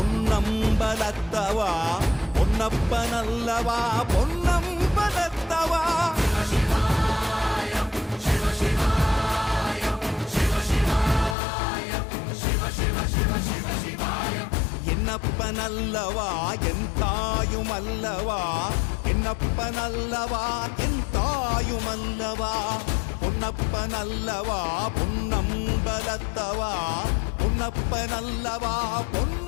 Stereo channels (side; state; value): right; drops out; at 11.4 s